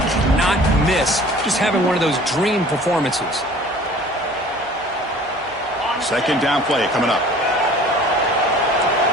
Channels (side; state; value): both; normal; correlation 0.48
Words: miss just having one of those dream performances. Second down play coming up.